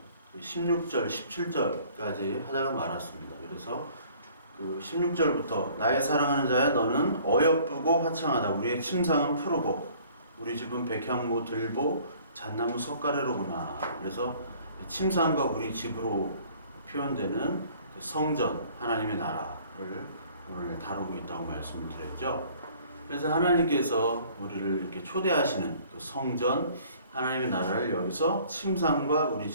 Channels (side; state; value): both; inverted; correlation -0.55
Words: 16절, 17절까지 하다가 말았습니다. 그래서 그 16절부터 나의 사랑하는 자야 너는 어여쁘고 화창하다. 우리의 침상은 푸르고 우리 집은 백향모 들보 잣나무 석가래로구나. 그래서 침상과 우리 집으로 표현되는 성전, 하나님의 나라를 오늘 다루고 있다고 말씀을 드렸죠. 그래서 하나님께서 우리를 이렇게 초대하시는 그 성전, 하나님의 나라를 여기서 침상과 우리